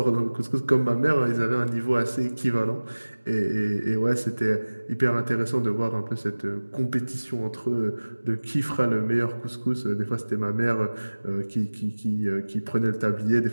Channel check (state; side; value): inverted; both; correlation -1.00